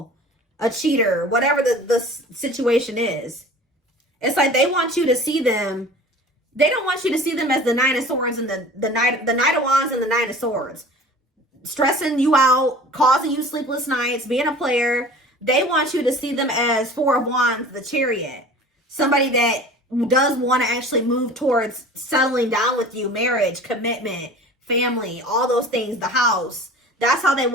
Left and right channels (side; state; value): both; normal; correlation 0.42